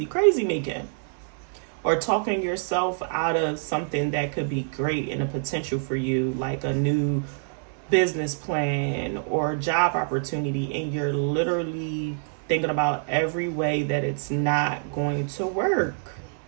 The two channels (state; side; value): silent; left; 61 dB below the other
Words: making. Or talking yourself out of something that could be great and a potential for you, like a new business plan or job opportunity, and you're literally thinking about every way that it's not going to work.